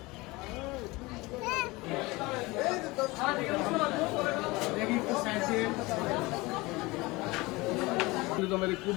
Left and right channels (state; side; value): quieter; right; 22.4 dB